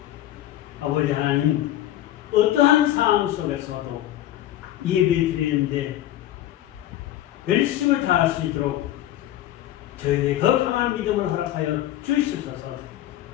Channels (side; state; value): right; quieter; 13.3 dB